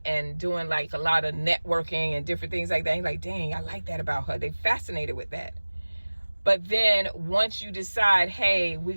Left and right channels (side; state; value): both; inverted; correlation -1.00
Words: doing like a lot of networking and different things like that. And you're like, dang, I like that about her. They fascinated with that. But then once you decide, hey, we're